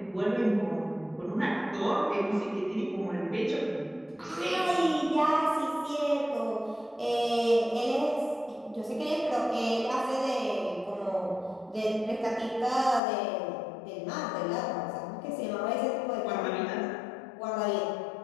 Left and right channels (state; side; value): drops out; right; at 13.0 s